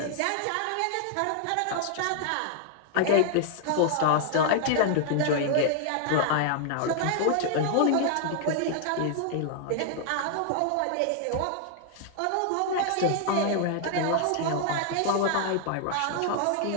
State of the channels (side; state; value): both; different; correlation 0.00